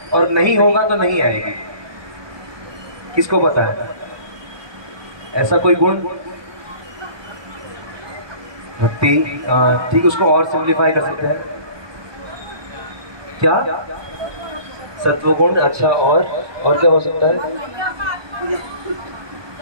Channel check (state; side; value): late; left; 1.2 ms